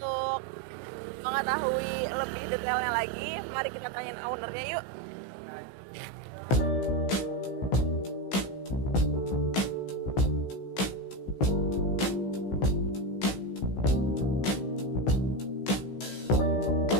mengetahui lebih detailnya lagi, mari kita tanyain ownernya yuk.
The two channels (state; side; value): late; right; 16 ms